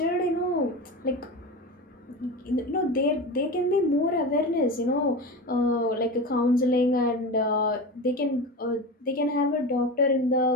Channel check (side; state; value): both; normal; correlation 0.26